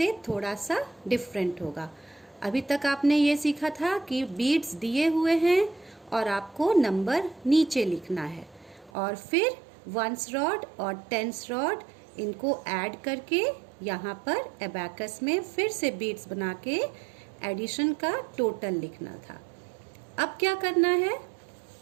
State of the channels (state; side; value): drops out; left; at 8.9 s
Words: थोड़ा सा डिफरेंट होगा. अभी तक आपने ये सीखा था कि बीट्स दिए हुए हैं और आपको नंबर नीचे लिखना है, और फिर वंस रॉड और टेंस रॉड इनको ऐड करके यहाँ पर एबैकस में फिर से बीट्स बना के एडिशन का टोटल लिखना था. अब क्या करना है?